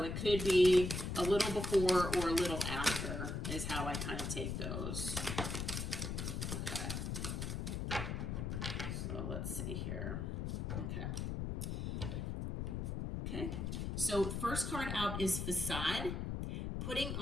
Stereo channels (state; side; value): noise; left; rumble, 3 dB below the sound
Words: it could be a little before or a little after is how I kind of take those. Okay. So let's see here. Okay. So first card out is Facade, putting